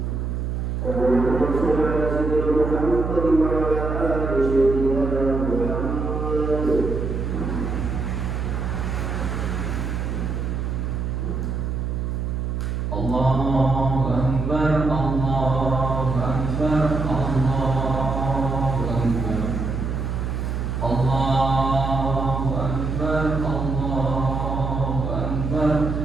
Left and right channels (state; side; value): noise; right; hum, 2 dB below the sound